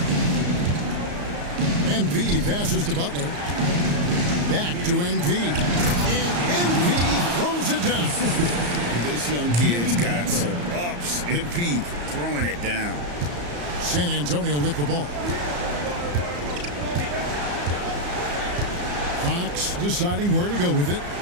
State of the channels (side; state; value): left; late; 34 ms